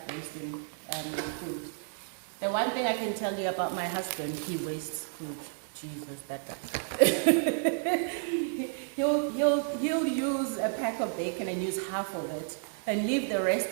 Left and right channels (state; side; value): silent; left; digital silence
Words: wasting food. The one thing I can tell you about my husband, he wastes food. Jesus, that guy. he'll use a pack of bacon and use half of it and leave the rest